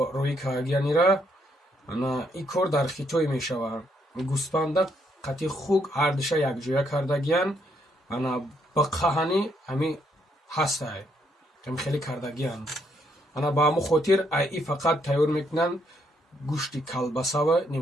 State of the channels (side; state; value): both; normal; correlation 0.73